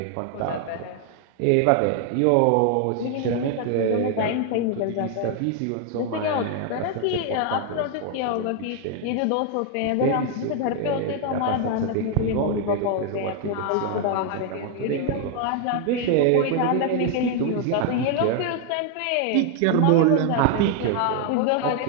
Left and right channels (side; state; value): both; different; correlation 0.00